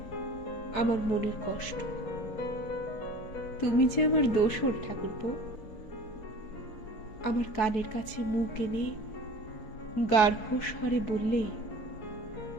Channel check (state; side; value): late; right; 4.7 ms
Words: আমার মনের কষ্ট। তুমি যে আমার দোসর ঠাকুরপো। আমার কানের কাছে মুখ এনে গাঢ় স্বরে বললে,